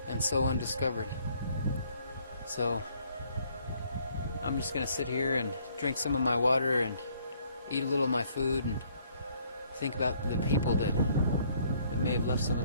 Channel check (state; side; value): inverted; both; correlation -0.64